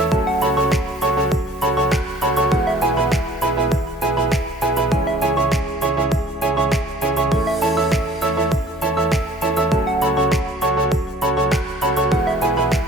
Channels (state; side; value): normal; both; correlation 0.53